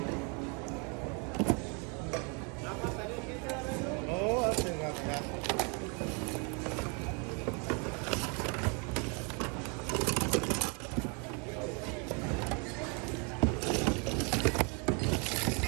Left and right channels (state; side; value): quieter; left; 34.4 dB